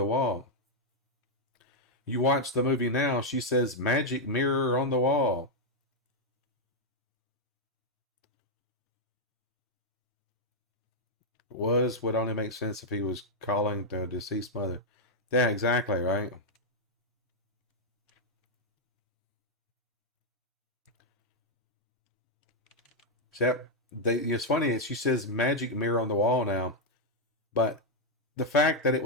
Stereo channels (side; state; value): both; normal; correlation -0.02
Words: wall. You watch the movie now, she says magic mirror on the wall. Would only make sense if he was calling the deceased mother. Yeah, exactly, right? Yep. It's funny, she says magic mirror on the wall now. But the fact that it